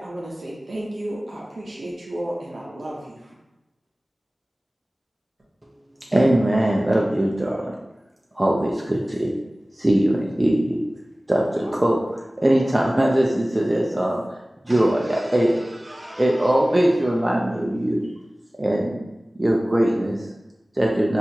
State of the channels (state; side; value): normal; both; correlation 0.98